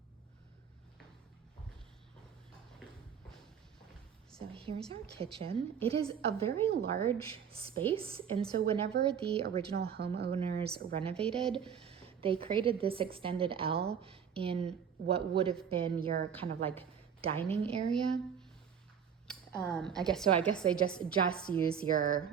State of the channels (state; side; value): quieter; left; 7.7 dB